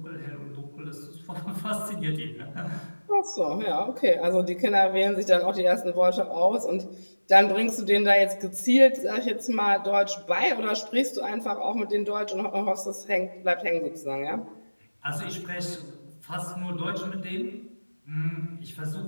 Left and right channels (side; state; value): both; inverted; correlation -1.00